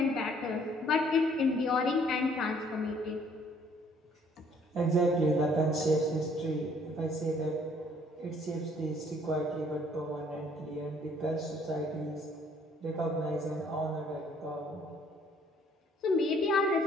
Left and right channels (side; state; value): both; normal; correlation 0.61